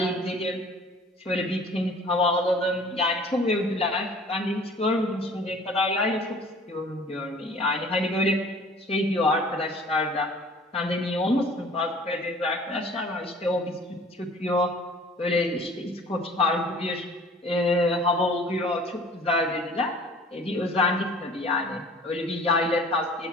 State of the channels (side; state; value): both; normal; correlation 0.49